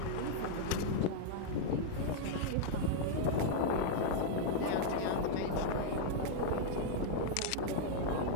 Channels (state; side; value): different; both; correlation -0.01